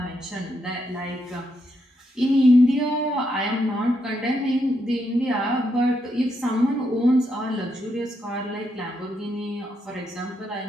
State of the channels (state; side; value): normal; both; correlation 0.80